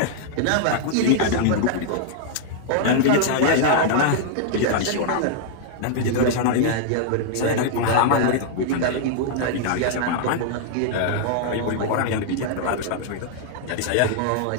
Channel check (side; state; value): both; different; correlation -0.01